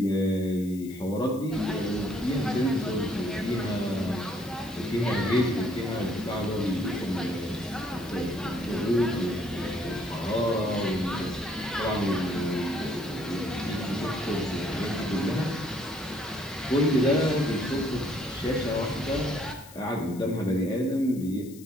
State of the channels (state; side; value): noise; left; hiss, 20 dB below the sound